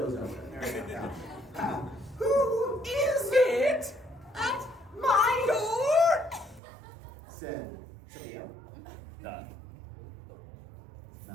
up there. Yeah. Who is it at my door? Said Sophia. The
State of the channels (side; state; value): left; drops out; at 6.6 s